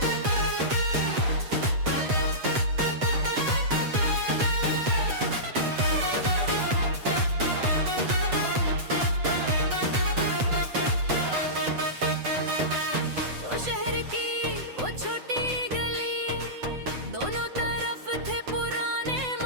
तो शहर की वो छोटी गली, दोनों तरफ थे पुराने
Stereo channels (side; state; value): left; late; 7.9 ms